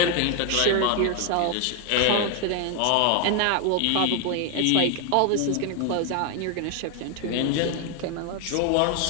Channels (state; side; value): different; both; correlation 0.01